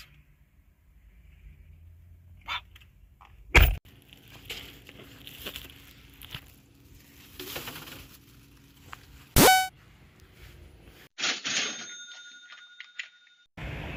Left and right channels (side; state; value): both; identical; correlation 1.00